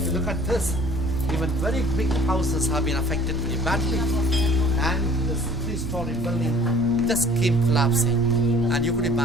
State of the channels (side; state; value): both; normal; correlation 0.52